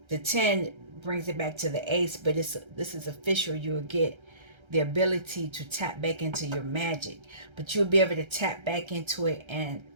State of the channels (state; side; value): late; left; 1.3 ms